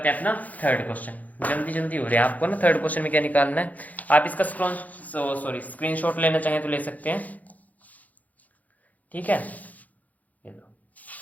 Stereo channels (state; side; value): late; right; 0.078 ms